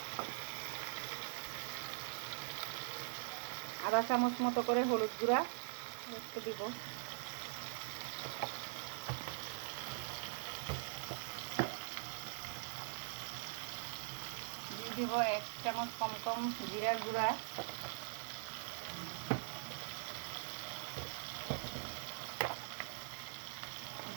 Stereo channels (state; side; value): silent; left; digital silence